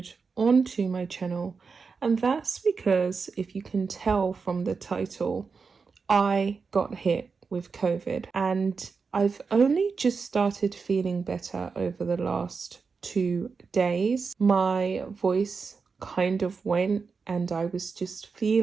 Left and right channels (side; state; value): left; quieter; 5.1 dB